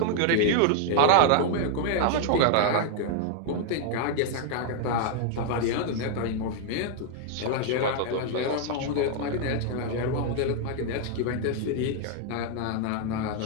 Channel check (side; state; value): both; different; correlation 0.00